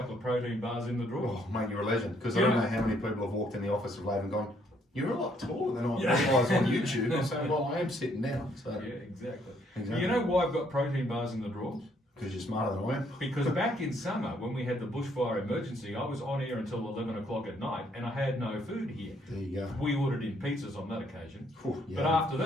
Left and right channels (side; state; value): both; normal; correlation 0.68